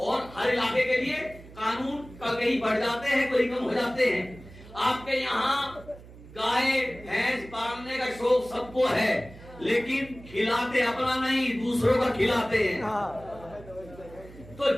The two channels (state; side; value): noise; right; hum, 19 dB below the sound